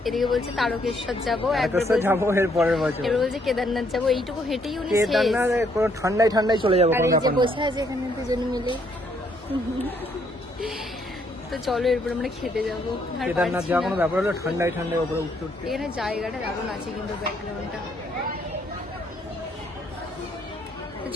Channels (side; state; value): both; normal; correlation 0.70